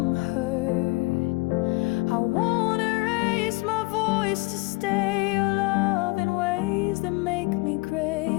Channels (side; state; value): right; quieter; 24.9 dB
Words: hurt. I won't erase my voice to stay or love in ways that make me